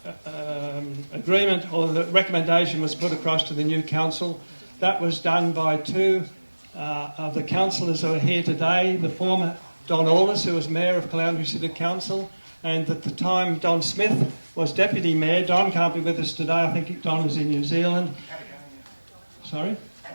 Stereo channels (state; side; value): inverted; both; correlation -1.00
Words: agreement or the recommendation was put across to the new council, that was done by 2 of the councillors who are here today, the former Don Wallace, who was Mayor of Caloundra City Council, and at the time Don Smith was Deputy Mayor. Don can't be with us today, I think Don is in New Zealand. Sorry?